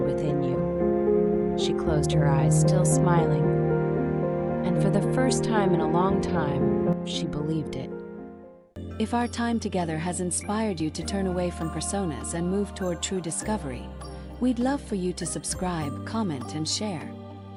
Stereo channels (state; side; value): identical; both; correlation 1.00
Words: within you." She closed her eyes, still smiling. And for the first time in a long time, she believed it. If our time together has inspired you to turn away from personas and move toward true discovery, we'd love for you to subscribe, comment, and share.